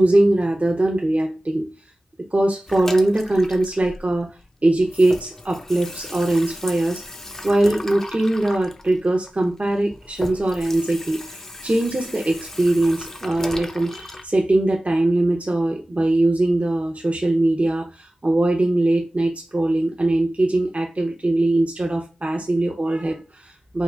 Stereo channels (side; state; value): both; normal; correlation 0.97